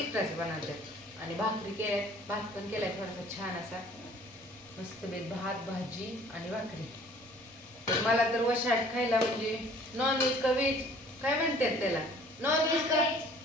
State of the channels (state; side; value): normal; both; correlation 0.53